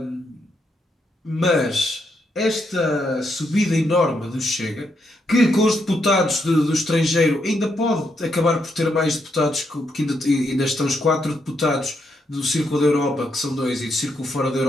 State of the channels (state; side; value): normal; both; correlation 0.79